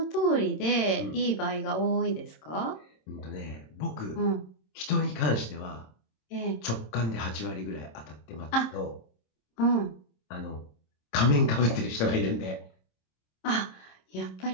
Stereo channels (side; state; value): right; late; 26 ms